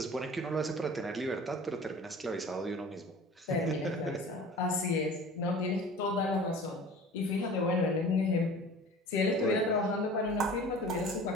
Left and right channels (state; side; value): normal; both; correlation 0.42